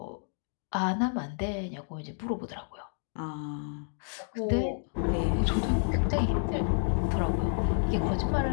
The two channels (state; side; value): silent; right; digital silence